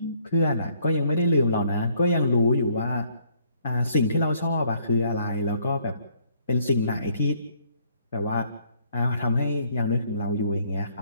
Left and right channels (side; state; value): both; inverted; correlation -0.65